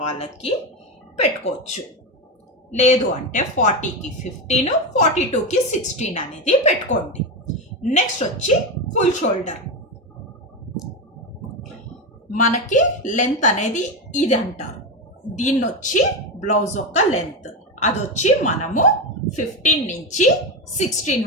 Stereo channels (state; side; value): normal; both; correlation 0.14